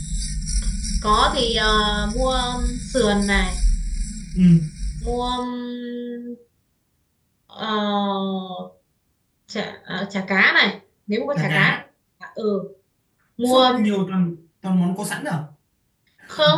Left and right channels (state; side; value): identical; both; correlation 1.00